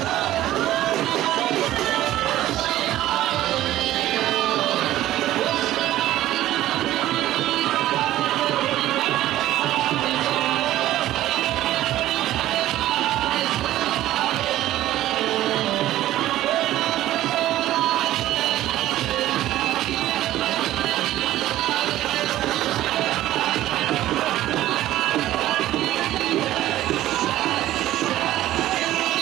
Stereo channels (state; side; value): quieter; left; 14.3 dB